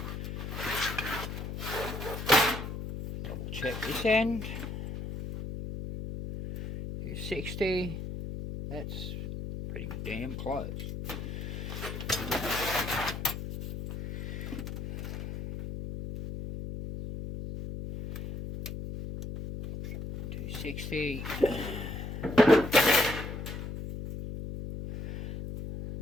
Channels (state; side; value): noise; left; hum, 6 dB below the sound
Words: Double check this end. 260. That's pretty damn close. $260.